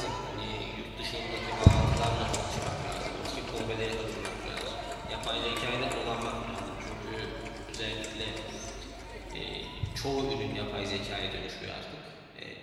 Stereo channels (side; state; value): both; identical; correlation 1.00